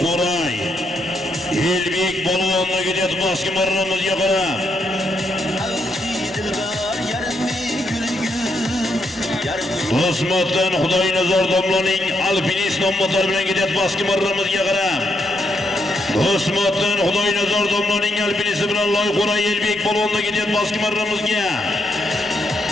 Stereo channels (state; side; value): normal; both; correlation 0.78